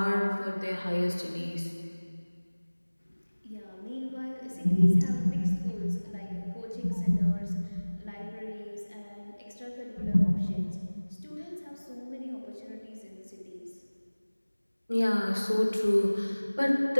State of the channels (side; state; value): both; inverted; correlation -1.00